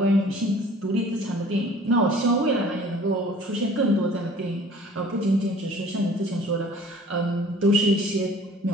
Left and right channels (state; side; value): normal; both; correlation 0.50